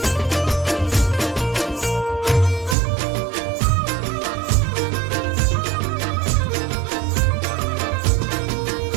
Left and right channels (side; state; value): left; drops out; at 2.8 s